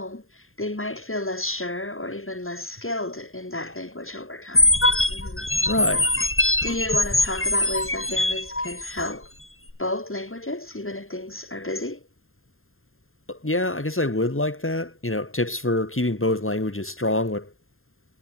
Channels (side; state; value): right; late; 0.61 ms